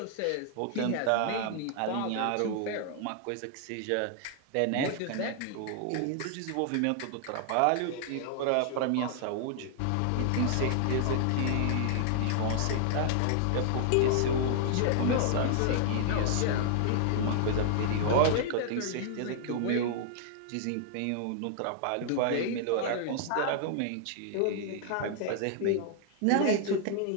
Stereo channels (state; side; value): different; both; correlation 0.00